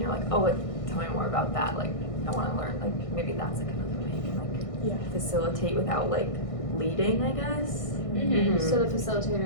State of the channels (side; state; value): right; late; 1.6 ms